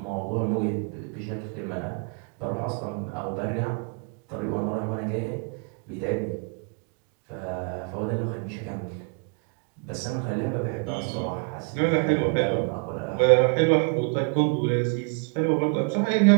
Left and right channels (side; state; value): left; quieter; 36.3 dB